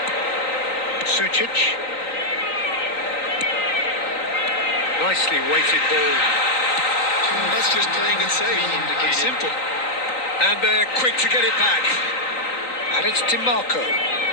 Sucic. Nicely weighted ball. That's just playing it safe. And simple. And they're quick to get it back. And it's DiMarco.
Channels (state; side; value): late; right; 3.9 ms